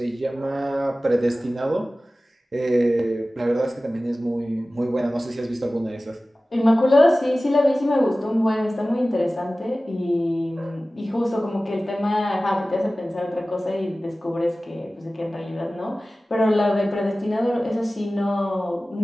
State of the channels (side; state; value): both; normal; correlation 0.97